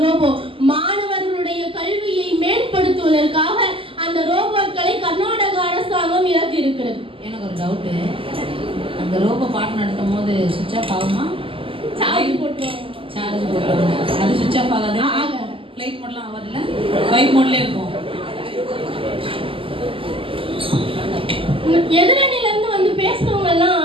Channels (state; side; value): late; left; 0.26 ms